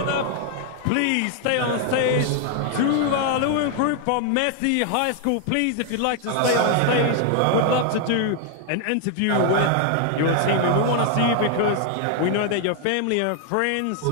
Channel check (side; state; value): both; different; correlation 0.00